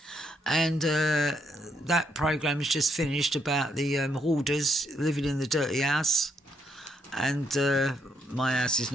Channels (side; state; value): both; normal; correlation 0.75